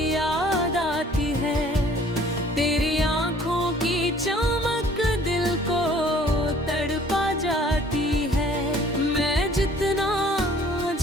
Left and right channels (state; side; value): normal; both; correlation 0.54